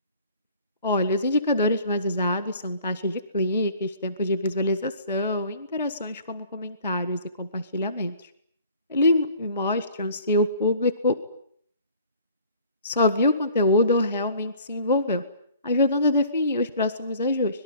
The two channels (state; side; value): inverted; both; correlation -0.52